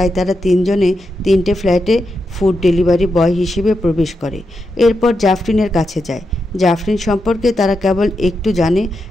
তারা তিনজনে 3টে ফ্ল্যাটে ফুড ডেলিভারি বয় হিসেবে প্রবেশ করে। এরপর জাফরিনের কাছে যায়। জাফরিন সম্পর্কে তারা কেবল একটু জানে,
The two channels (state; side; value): normal; both; correlation 0.86